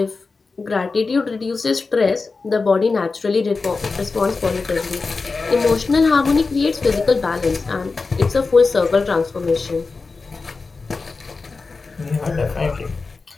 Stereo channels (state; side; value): quieter; right; 4.1 dB